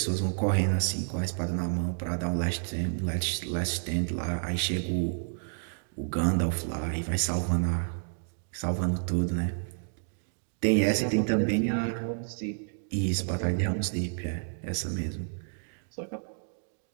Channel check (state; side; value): silent; left; digital silence